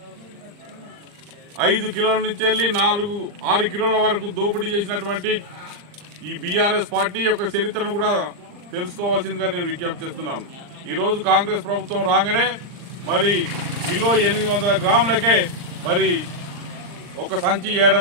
5 కిలోల నుంచి వెళ్ళి 6 కిలోల వరకు దోపిడీ చేసినటువంటి ఈ బీఆర్ఎస్ పార్టీ యొక్క చరిత్రను కూడా తెలుసుకోవాల్సిందిగా నేను విజ్ఞప్తి చేస్తున్నాను. ఈరోజు కాంగ్రెస్ ప్రభుత్వం రాగానే మరి కిలో 800 గ్రాములకే మరి ఒక సంచి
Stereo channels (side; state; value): left; late; 39 ms